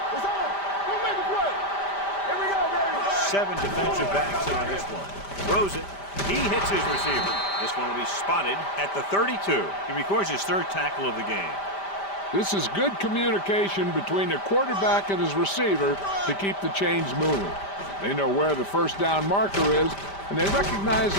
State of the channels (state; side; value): late; right; 5.1 ms